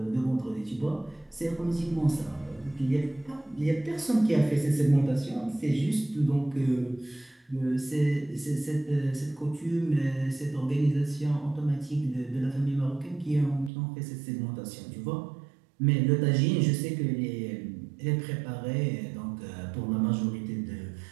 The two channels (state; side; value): drops out; left; at 13.7 s